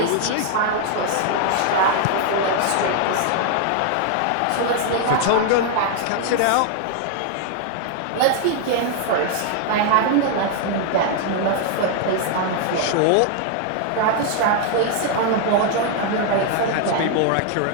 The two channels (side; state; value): both; different; correlation 0.00